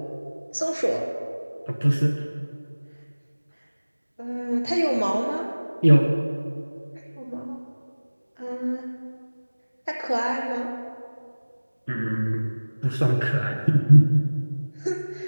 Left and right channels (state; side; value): inverted; both; correlation -1.00